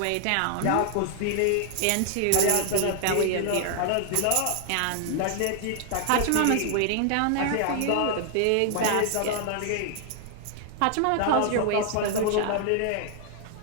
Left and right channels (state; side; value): different; both; correlation 0.00